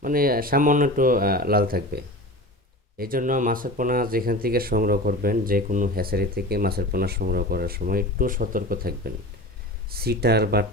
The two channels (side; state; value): both; normal; correlation 0.32